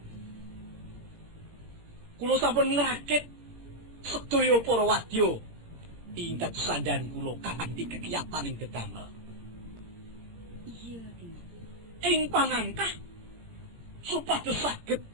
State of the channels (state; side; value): late; left; 17 ms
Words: Kula sampun ngrakit sedaya para wadya ing dados sandhan kula kanthi kegiatan ing dedamel. Iya, Dimas. Ing pangangkah supados saged